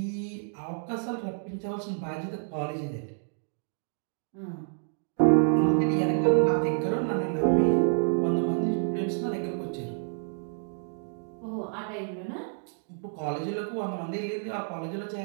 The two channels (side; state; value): left; silent; digital silence